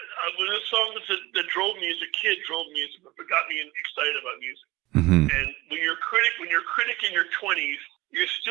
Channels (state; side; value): quieter; left; 20.0 dB